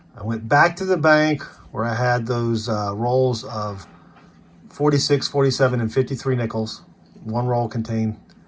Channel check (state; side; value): identical; both; correlation 1.00